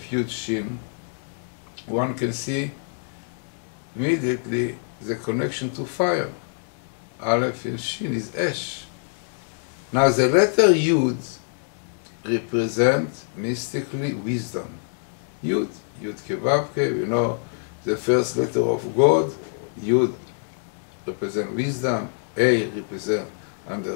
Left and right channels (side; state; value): right; silent; 62 dB below the other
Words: Yud, Shin, one can see immediately the connection to fire. Aleph and Shin is Esh. Now, the letter Yud represents mystically wisdom. Yud, Yud Kevavke, we know the first letter of God. Yud represents wisdom, A represents